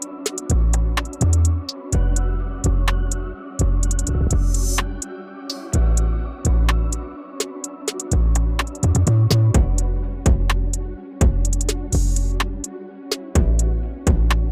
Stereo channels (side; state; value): both; identical; correlation 1.00